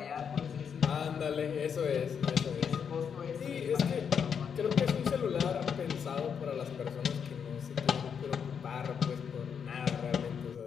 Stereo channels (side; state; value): right; quieter; 7.1 dB